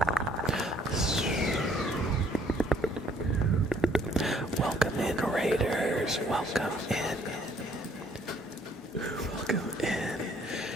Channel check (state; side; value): normal; both; correlation 0.63